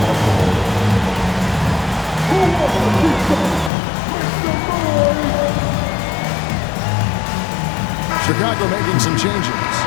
Chicago making some changes.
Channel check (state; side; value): drops out; right; at 3.7 s